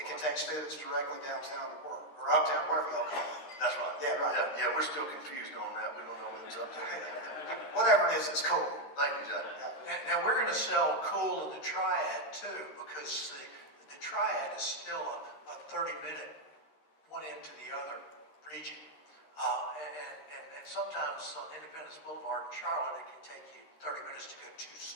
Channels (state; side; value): late; right; 13 ms